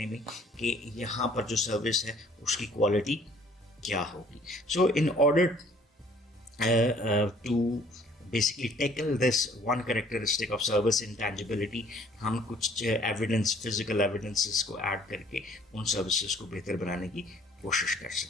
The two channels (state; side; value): normal; both; correlation 0.57